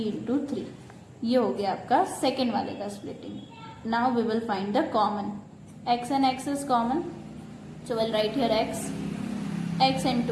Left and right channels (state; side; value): identical; both; correlation 1.00